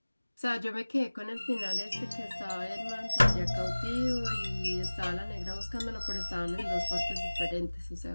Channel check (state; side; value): inverted; both; correlation -1.00